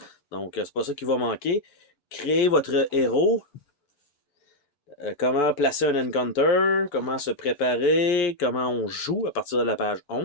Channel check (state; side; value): late; right; 6.9 ms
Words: Donc c'est pas ça qui va manquer. Créez votre héros. Comment placer un encounter, comment se préparer, comment on joue à partir de la page